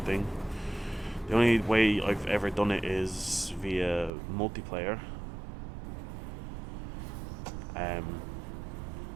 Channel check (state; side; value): drops out; left; at 4.1 s